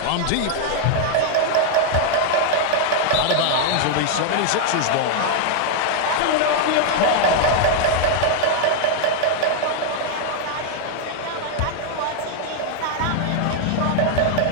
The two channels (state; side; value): different; both; correlation 0.00